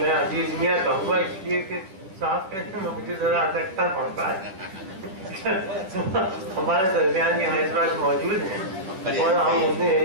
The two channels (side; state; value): left; late; 10 ms